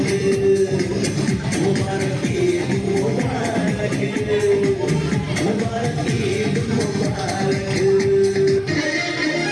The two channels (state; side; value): identical; both; correlation 1.00